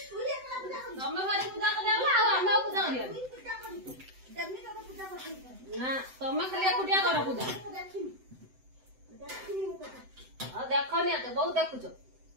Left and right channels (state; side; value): late; left; 7.8 ms